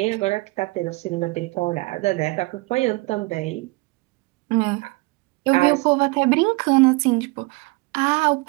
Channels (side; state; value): left; quieter; 24.4 dB